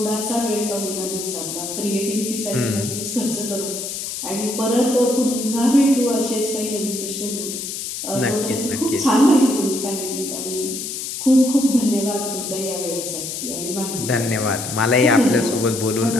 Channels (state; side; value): noise; left; hiss, 6 dB below the sound